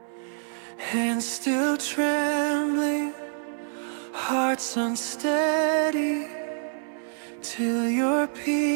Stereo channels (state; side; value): silent; left; 57 dB below the other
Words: hands still trembling, hearts unsteady, till your